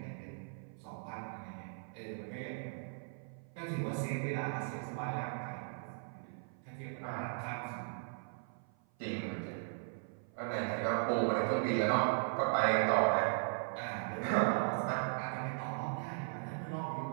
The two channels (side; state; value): left; silent; 53 dB below the other